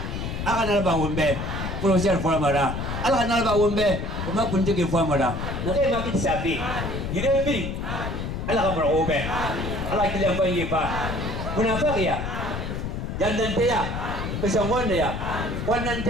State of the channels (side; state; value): left; noise; rumble, 4 dB below the sound